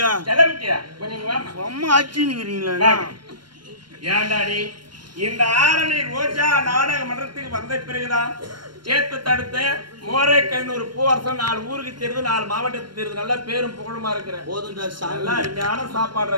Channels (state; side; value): late; left; 0.72 ms